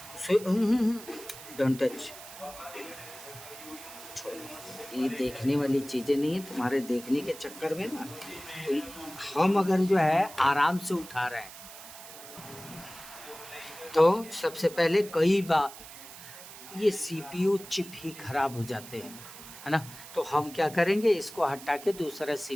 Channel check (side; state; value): right; noise; hiss, 15 dB below the sound